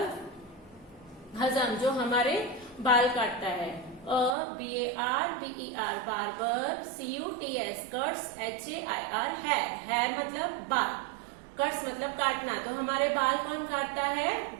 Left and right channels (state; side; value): drops out; left; at 4.4 s